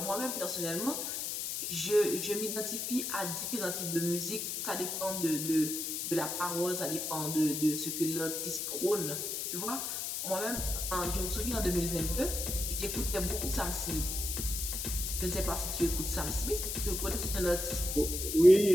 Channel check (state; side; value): noise; left; hiss, 3 dB below the sound